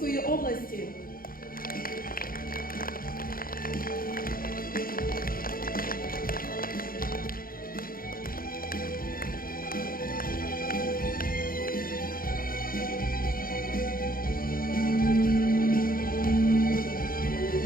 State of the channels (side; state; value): right; late; 0.42 ms